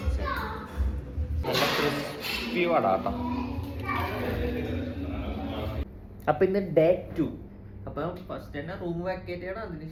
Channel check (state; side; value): identical; both; correlation 1.00